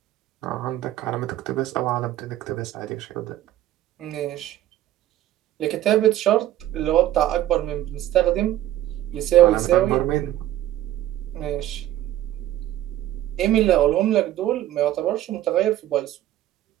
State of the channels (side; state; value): left; quieter; 13.5 dB